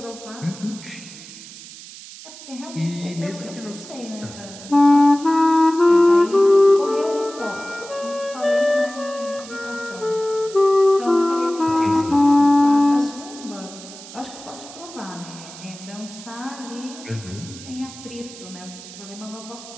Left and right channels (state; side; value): noise; right; hiss, 16 dB below the sound